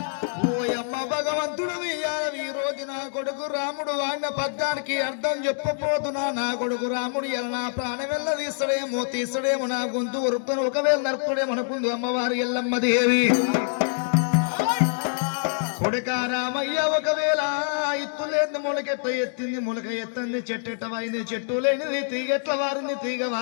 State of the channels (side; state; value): right; silent; digital silence